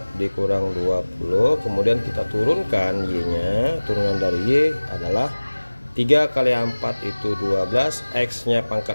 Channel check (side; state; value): both; inverted; correlation -1.00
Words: dikurang 20. Kemudian kita turunkan Y-nya, turunan dari Y adalah 3 kali 4 itu 12, X-nya